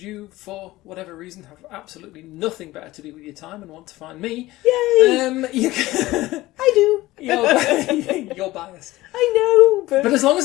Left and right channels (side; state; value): right; quieter; 17.9 dB